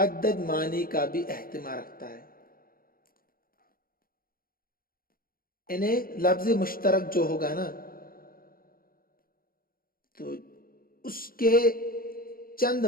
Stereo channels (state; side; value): late; right; 0.42 ms